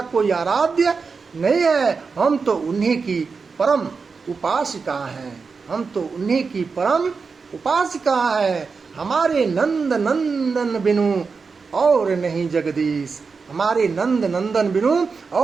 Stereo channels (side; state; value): left; quieter; 4.9 dB